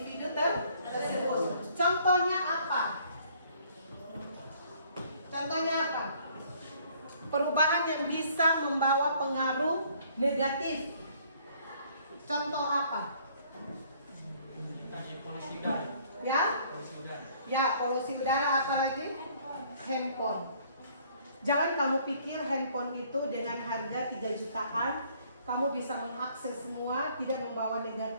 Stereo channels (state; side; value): inverted; both; correlation -0.60